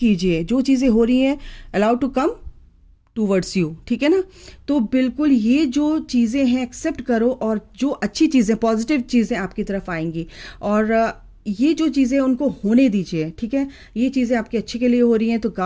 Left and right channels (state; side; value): identical; both; correlation 1.00